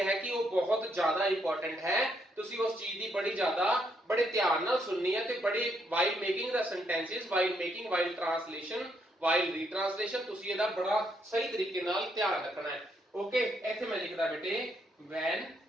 ਹੈ ਕਿ ਉਹ ਬਹੁਤ ਜ਼ਿਆਦਾ ਇੰਪੋਰਟੈਂਟ ਹੈ। ਤੁਸੀਂ ਉਸ ਚੀਜ਼ ਦੀ ਬੜੀ ਜ਼ਿਆਦਾ ਬੜੇ ਧਿਆਨ ਨਾਲ ਸੁਣਨੀ ਹੈ ਤੇ ਬੜੇ while making the sentences, while making, while translation, while retranslation ਤੁਸੀਂ ਇਹਦਾ ਬੜਾ ਸਹੀ ਤਰੀਕੇ ਨਾਲ ਧਿਆਨ ਰੱਖਣਾ ਹੈ। ਓਕੇ, ਇੱਥੇ ਮੈਂ ਲਿਖਦਾ ਬੇਟੇ when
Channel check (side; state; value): both; normal; correlation 0.74